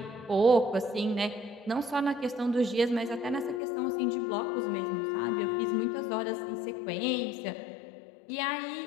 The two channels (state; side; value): drops out; right; at 3.6 s